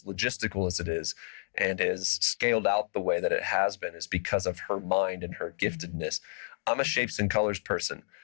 logistical as it is and is scaled out the way that it has been is because of her mind and her giftedness. I'm a shapes and colors person.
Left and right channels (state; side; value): silent; right; digital silence